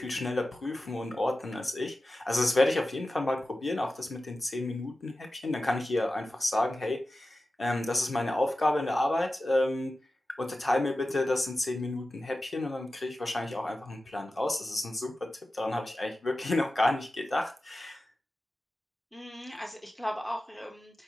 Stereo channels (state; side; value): normal; both; correlation 0.94